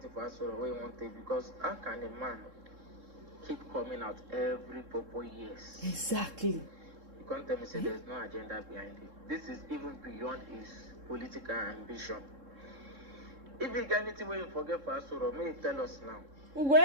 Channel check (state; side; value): late; left; 3.7 ms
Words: for us or we want it because how can a man keep coming out every 4 years? Exactly. You can't tell me say there's no agenda behind it. This is even beyond his political ambition. If you get anything where you forget for us or may you tell us now. We go